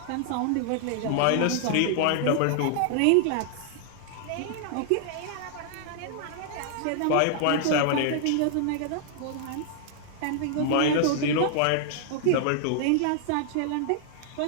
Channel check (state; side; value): different; both; correlation -0.01